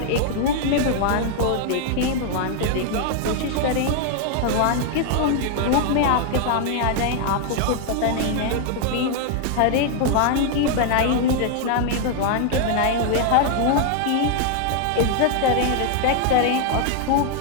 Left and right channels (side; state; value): both; different; correlation 0.00